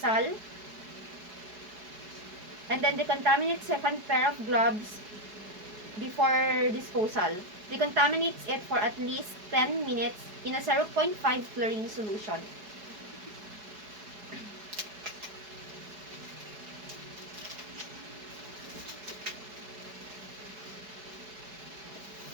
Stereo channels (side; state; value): left; late; 4.7 ms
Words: And then, decontaminates second pair of gloves before disposal. Decontaminates it for at least 10 minutes in a 0.5 chlorine solution.